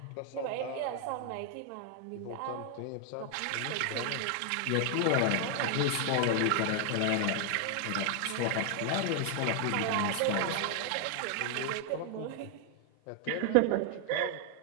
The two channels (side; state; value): both; different; correlation 0.00